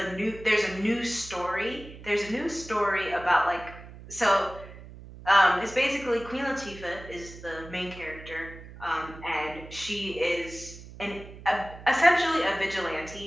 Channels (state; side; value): noise; right; hum, 16 dB below the sound